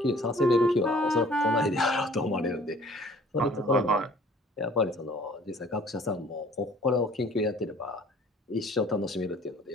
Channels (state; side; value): normal; both; correlation 0.53